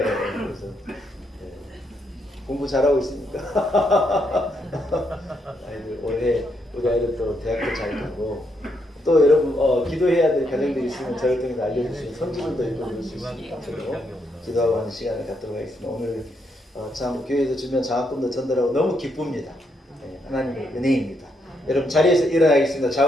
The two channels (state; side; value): normal; both; correlation 0.77